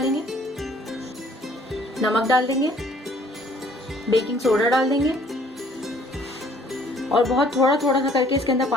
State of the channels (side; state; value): both; normal; correlation 0.59